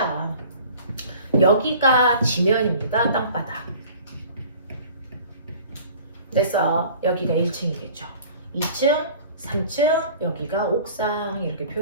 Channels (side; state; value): both; inverted; correlation -0.46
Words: 여기가 지면입니다. 땅바닥. 됐어. 여기가 1층이겠죠. 2층 3층, 여기가 옥상 이렇게